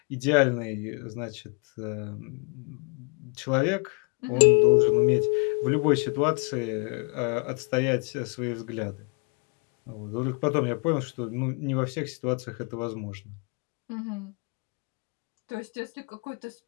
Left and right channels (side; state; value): right; quieter; 34.9 dB